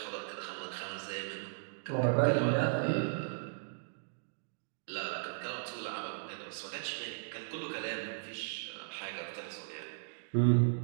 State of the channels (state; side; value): silent; left; digital silence